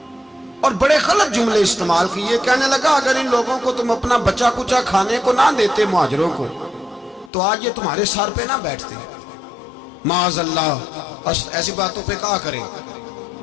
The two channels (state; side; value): drops out; right; at 7.3 s